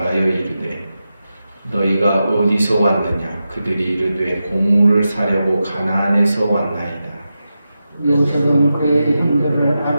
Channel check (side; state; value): both; inverted; correlation -0.91